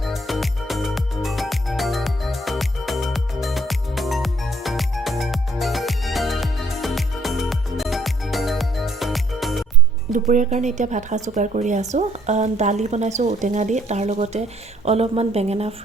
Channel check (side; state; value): both; normal; correlation 0.65